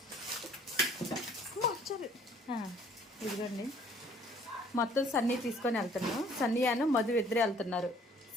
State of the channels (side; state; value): both; normal; correlation 0.57